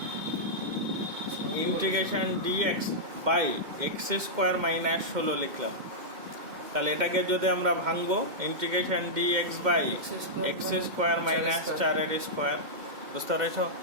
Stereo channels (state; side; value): late; left; 2.1 ms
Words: integration dx by x square minus 16 লিখলাম। তাহলে এটাকে যদি আমরা ভাঙবো, integration dx by x square minus 4 এর স্কয়ার। বুঝতে পেরেছো?